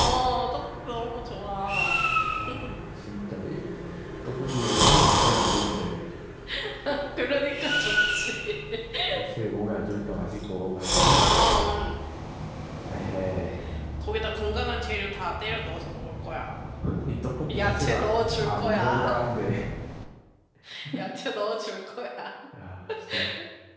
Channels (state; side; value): identical; both; correlation 1.00